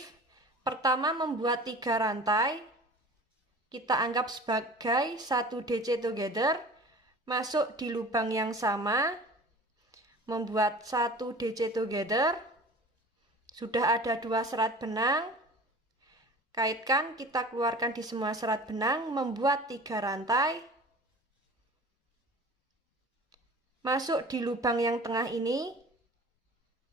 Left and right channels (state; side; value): normal; both; correlation 0.41